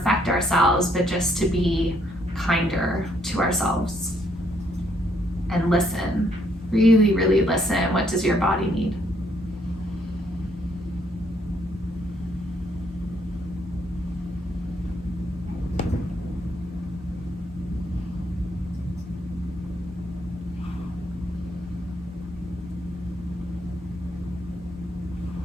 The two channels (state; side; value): normal; both; correlation 0.71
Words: ourselves, but just to be kinder to ourselves and listen. Really, really listen. What does your body need?